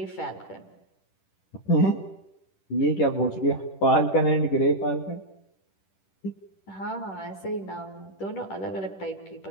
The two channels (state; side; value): late; right; 10 ms